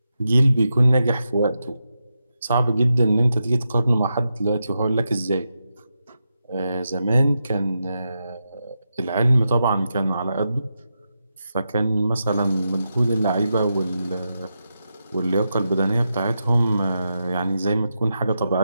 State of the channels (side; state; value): both; inverted; correlation -0.87